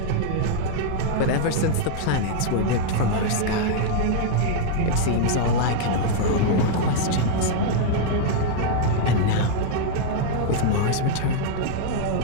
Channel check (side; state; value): both; different; correlation -0.01